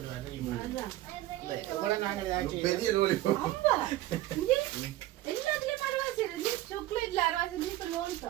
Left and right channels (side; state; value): left; quieter; 15.7 dB